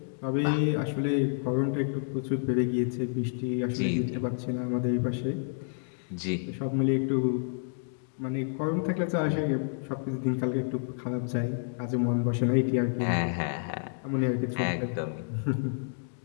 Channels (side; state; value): right; silent; digital silence